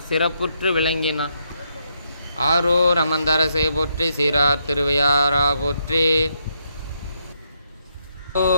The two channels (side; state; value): both; inverted; correlation -0.78